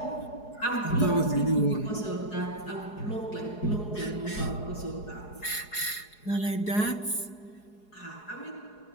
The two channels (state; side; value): late; right; 4.8 ms